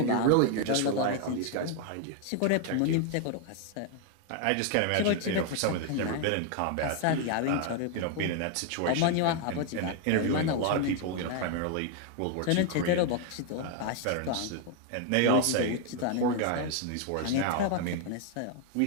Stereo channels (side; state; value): both; different; correlation 0.01